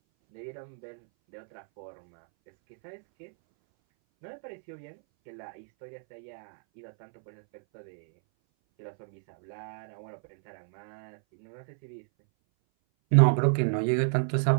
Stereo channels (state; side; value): silent; left; 57 dB below the other